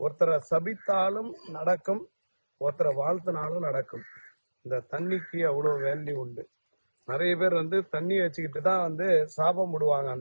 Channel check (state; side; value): inverted; both; correlation -1.00